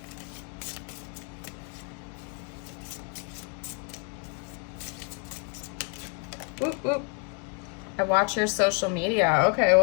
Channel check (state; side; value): quieter; right; 37.5 dB